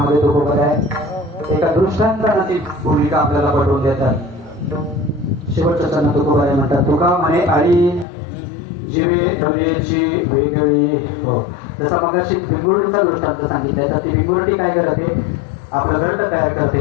तुकोबर आहे एका दृष्टांतानं ती भूमिका आपल्याला पटवून देतात. शेवटच्या चरण तुकोबारे म्हणतात, तुका म्हणे आळी जीवे ढोलेची वेगळी. हो, जसा मगाशी भिंगुर्डीचा दृष्टांत सांगितलाय, तर ती भिंगुर्डी काय करते, आपलं घरट तयार करते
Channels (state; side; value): drops out; right; at 8.1 s